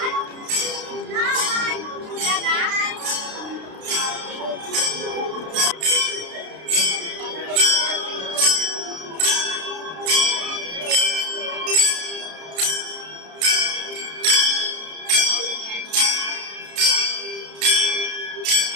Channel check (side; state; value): left; late; 32 ms